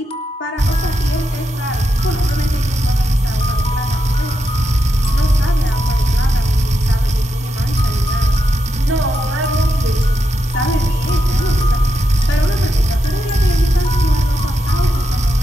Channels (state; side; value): normal; both; correlation 0.85